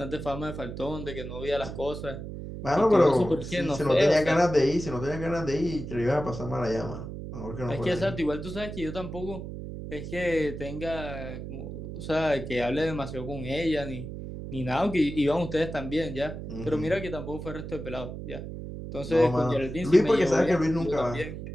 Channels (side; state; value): right; noise; hum, 8 dB below the sound